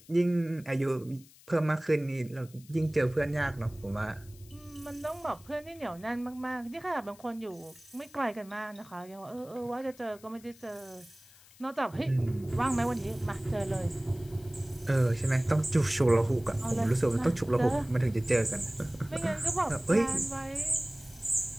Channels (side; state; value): left; noise; hiss, 24 dB below the sound